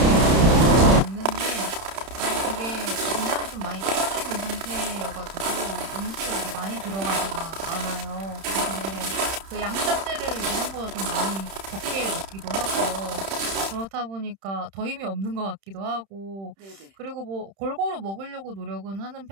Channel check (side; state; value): left; late; 31 ms